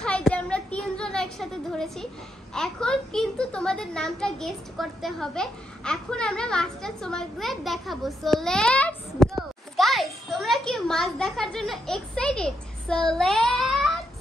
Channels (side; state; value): both; normal; correlation 0.80